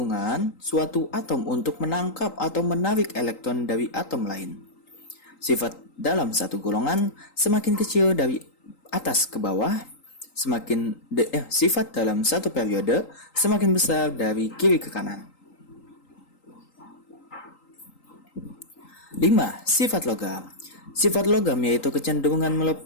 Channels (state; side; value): late; right; 3.8 ms